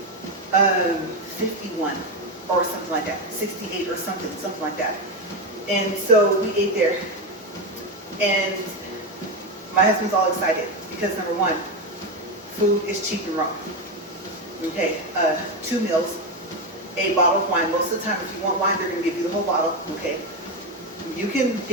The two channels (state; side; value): normal; both; correlation 0.12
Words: 51 or something like that, 68 or something like that. And so we ate there. And my husband's all excited because number one, food is cheap in Rome. Okay, 2 meals, a bottle of wine. Most of the time, if you want wine, they're going to give you the whole bottle. Okay, you can